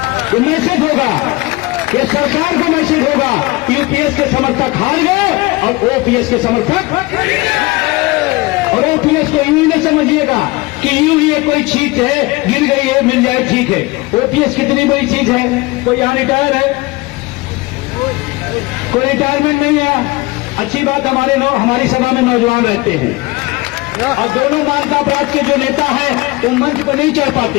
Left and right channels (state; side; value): quieter; right; 22.4 dB